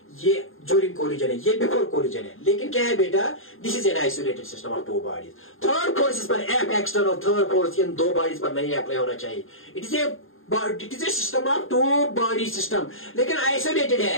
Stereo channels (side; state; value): right; late; 0.60 ms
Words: ये ड्यूरिंग कोलिजन है, ये बिफोर कोलिजन है, लेकिन क्या है बेटा, this is an isolated system of two bodies, third force पर एफ एक्सटर्नल, थर्ड फोर्स इन दो बॉडीज पर नहीं अप्लाई होना चाहिए, it is a system of two body system, लेकिन आइसोलेटेड